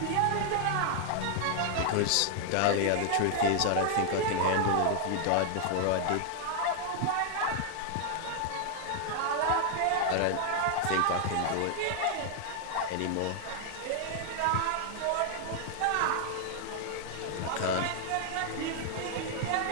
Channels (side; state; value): both; different; correlation 0.00